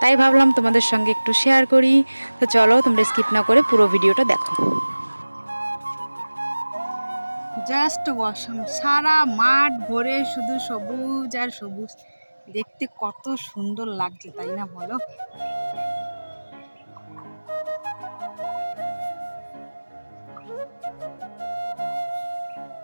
ভাবলাম তোমাদের সঙ্গে একটু শেয়ার করি। তো চলো, তোমরা স্কিপ না করে পুরো ভিডিওটা দেখো। জাস্ট ওয়াসম, সারা মাঠ ভরে শুধু সবুজ আর সবুজ, দেখতে কত সুন্দর লাগছে, তাই না বলো?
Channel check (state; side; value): inverted; both; correlation -1.00